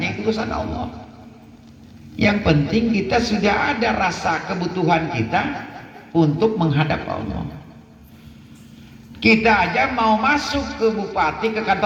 itu urusan Allah. Yang penting kita sudah ada rasa kebutuhan kita untuk menghadap Allah. Kita aja mau masuk ke bupati, ke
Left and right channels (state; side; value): identical; both; correlation 1.00